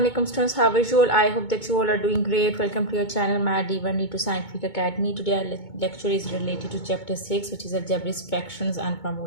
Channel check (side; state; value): right; late; 2.2 ms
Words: students, how are you all? I hope that you all are doing great. Welcome to your channel Math D1 to Scientific Academy. Today our lecture is related to chapter 6, which is algebraic fractions and